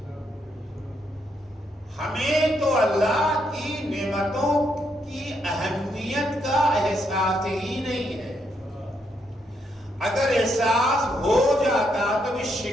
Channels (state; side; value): normal; both; correlation 0.77